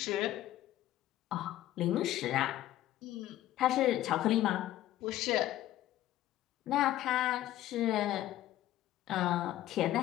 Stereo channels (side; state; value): right; quieter; 13.9 dB